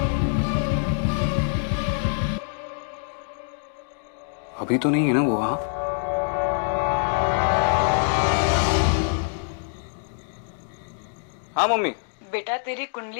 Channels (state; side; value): silent; right; 62 dB below the other